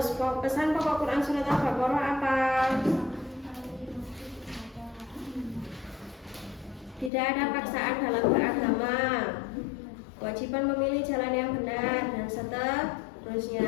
pesan pokok Quran surat Al-Baqarah apa? Tidak ada paksaan dalam beragama. Kewajiban memilih jalan yang benar dan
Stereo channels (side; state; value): right; drops out; at 7.1 s